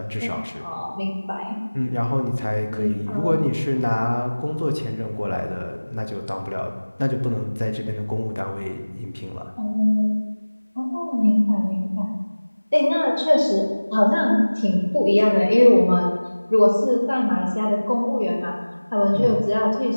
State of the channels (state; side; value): inverted; both; correlation -1.00